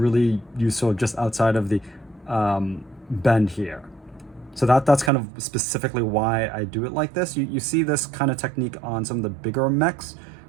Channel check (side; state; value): left; drops out; at 5.1 s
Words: useful just outside of the bend here. So that's kind of specifically why I do it like this. You see this kind of technique on some of the bigger mechs